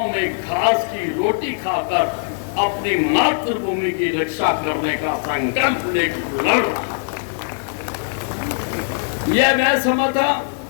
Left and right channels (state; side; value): silent; right; digital silence